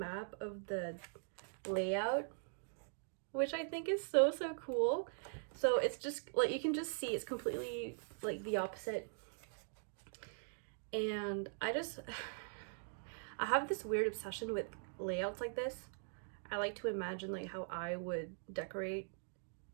of the layout, which I think is so cool. So it's just like, you can just see it's completely like the opposite. And I have this weird obsession with layouts like this. I like to imagine like how I would decorate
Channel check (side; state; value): left; silent; digital silence